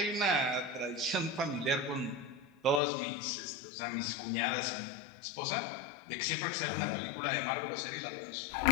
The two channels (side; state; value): right; drops out; at 2.8 s